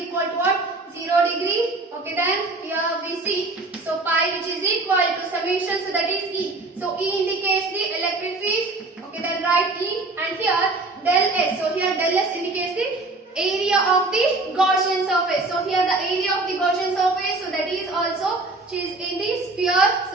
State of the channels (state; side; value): quieter; left; 3.2 dB